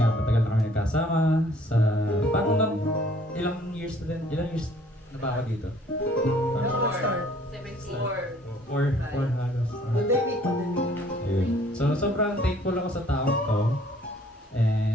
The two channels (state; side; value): normal; both; correlation 0.58